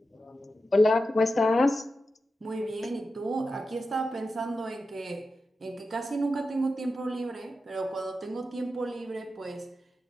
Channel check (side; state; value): both; normal; correlation 0.91